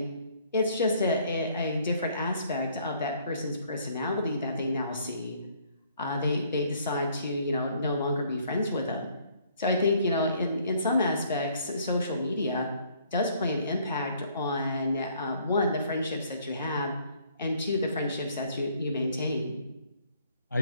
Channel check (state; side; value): inverted; both; correlation -0.62